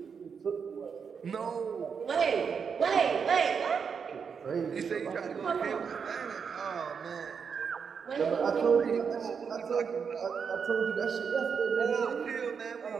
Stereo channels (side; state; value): left; quieter; 6.3 dB